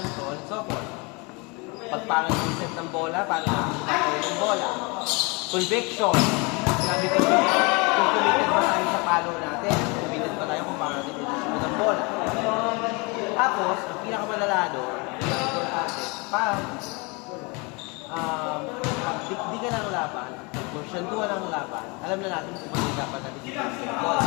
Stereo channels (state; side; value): quieter; right; 28.9 dB